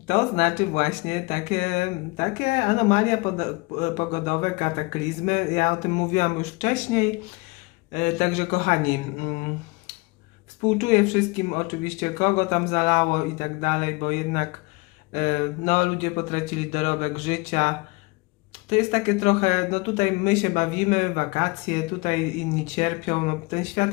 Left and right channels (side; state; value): right; quieter; 25.7 dB